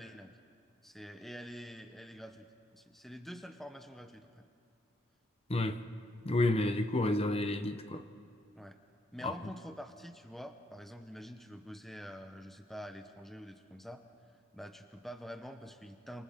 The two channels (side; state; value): both; normal; correlation 0.75